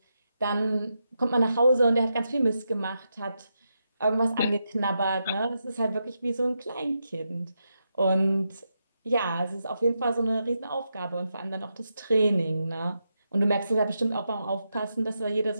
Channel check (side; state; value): both; inverted; correlation -0.85